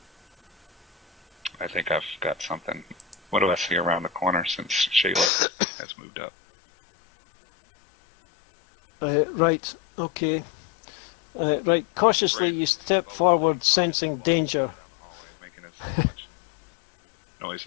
I think I've got something. What do I see around the corner since Shayla has moved up? Right, okay. Right, cautiously you step forward, sensing danger. Making as much noise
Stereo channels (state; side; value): drops out; right; at 5.3 s